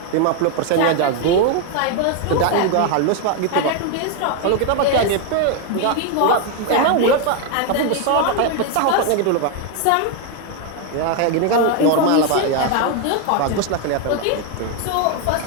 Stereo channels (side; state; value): both; different; correlation 0.01